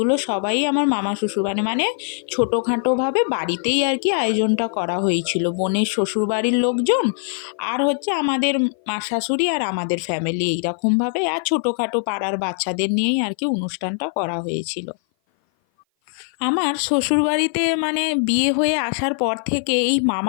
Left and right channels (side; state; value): right; silent; 57 dB below the other